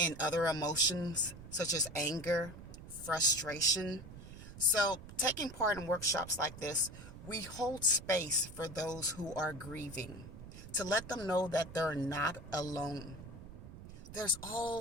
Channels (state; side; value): noise; right; rumble, 14 dB below the sound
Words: other emotions such as anger, frustration. So, taking part in workshops like this, we hold space for those who are grieving to let them know that they're not alone. There's